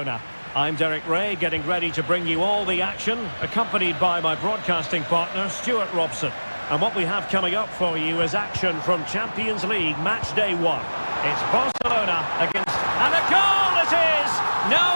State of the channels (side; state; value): both; inverted; correlation -1.00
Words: I'm Derek Ray, getting ready to bring you all the action, accompanied by my broadcasting partner, Stuart Robson. And what we have coming up for you is action from Champions League match day 1. It's Barcelona against... And a goal it is!